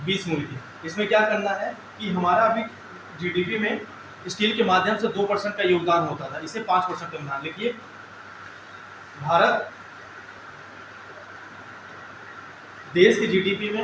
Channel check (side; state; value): both; identical; correlation 1.00